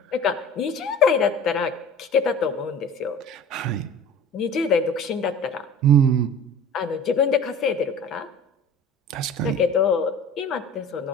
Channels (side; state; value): both; normal; correlation 0.40